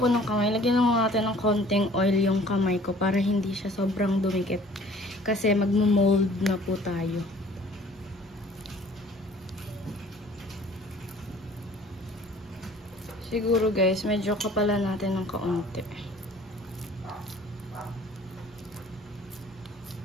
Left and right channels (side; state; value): both; normal; correlation 0.52